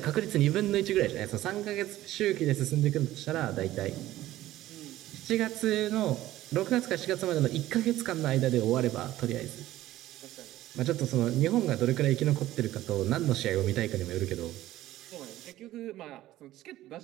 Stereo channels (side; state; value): left; quieter; 15.0 dB